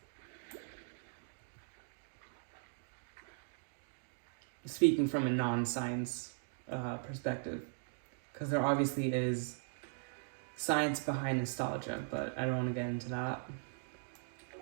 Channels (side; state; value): left; silent; digital silence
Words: Speaking from a non-science perspective. Because there obviously is science behind nostalgia, but I don't want to get into that.